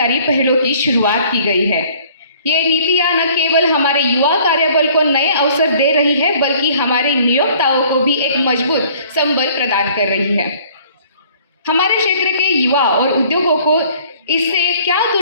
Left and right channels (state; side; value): inverted; both; correlation -0.55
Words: पहलों की शुरुआत की गई है। ये नीतियाँ न केवल हमारे युवा कार्यबल को नए अवसर दे रही है बल्कि हमारे नियोक्ताओं को भी एक मजबूत संबल प्रदान कर रही है। हमारे क्षेत्र के युवा और उद्योगों को इससे क्या